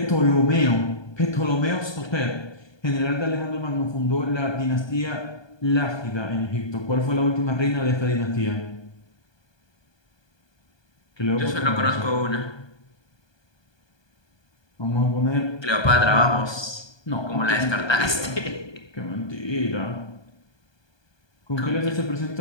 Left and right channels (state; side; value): late; right; 1.2 ms